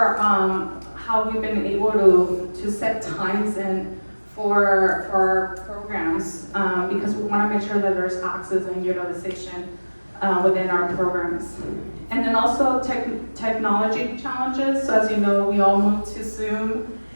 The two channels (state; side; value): inverted; both; correlation -1.00